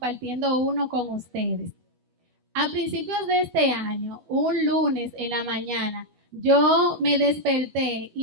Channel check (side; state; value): left; late; 12 ms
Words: uno con ustedes. A principios de este año, un lunes en la mañana, yo me desperté